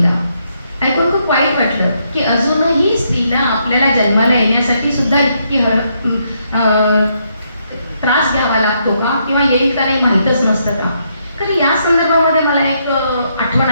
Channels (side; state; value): both; inverted; correlation -0.76